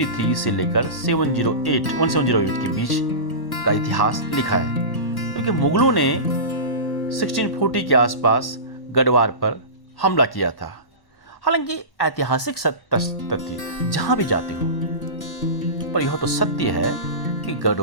से लेकर 1708 के बीच का इतिहास लिखा है, क्योंकि मुगलों ने 1640 के आसपास गढ़वाल पर हमला किया था। हालांकि ऐतिहासिक तथ्य जहां भी जाते हो, पर यह तो सत्य है कि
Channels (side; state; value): right; late; 1.1 ms